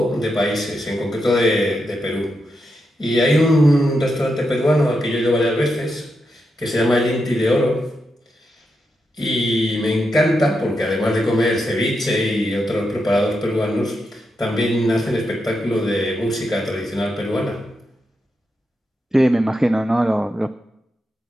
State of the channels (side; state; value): both; normal; correlation 0.85